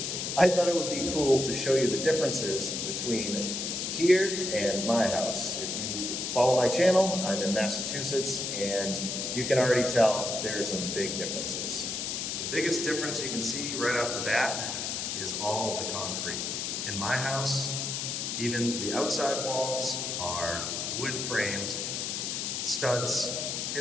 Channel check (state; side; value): noise; left; hiss, 2 dB below the sound